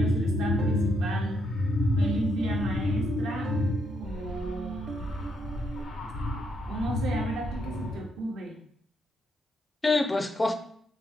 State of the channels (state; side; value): normal; both; correlation 0.76